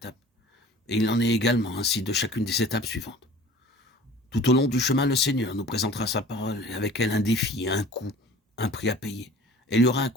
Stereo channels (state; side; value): normal; both; correlation 0.45